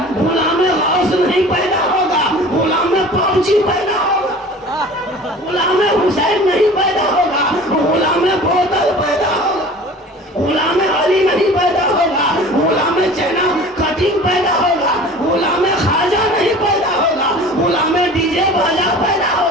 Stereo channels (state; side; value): normal; both; correlation 0.42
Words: गुलाम में हाउस नहीं पैदा होगा, गुलाम में पबजी पैदा होगा, गुलाम में हुसैन नहीं पैदा होगा, गुलाम में बोतल पैदा होगा, गुलाम में अली नहीं पैदा होगा, गुलाम में चैना कटिंग पैदा होगा, गुलाम में खाजा नहीं पैदा होगा, गुलाम में डीजे बाजा पैदा